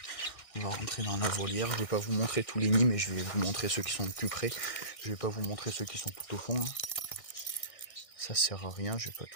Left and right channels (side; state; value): right; late; 1.6 ms